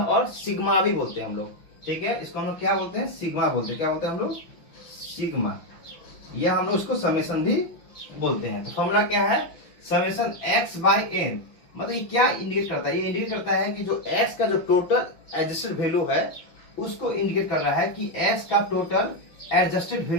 और सिग्मा भी बोलते हैं हम लोग। ठीक है, इसको हम लोग क्या बोलते हैं, सिग्मा बोलते हैं। क्या बोलते हैं हम लोग, सिग्मा, या हम लोग उसको समेशन भी बोलते हैं। तो फॉर्मूला क्या है, समेशन x बाई n, मतलब ये क्या इंडिकेट करता है, ये इंडिकेट करता है कि जो x का जो टोटल एडजस्टेड वैल्यू है उसको इंडिकेट कर रहा है कि x का टोटल एडजस्टेड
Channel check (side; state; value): right; late; 5.9 ms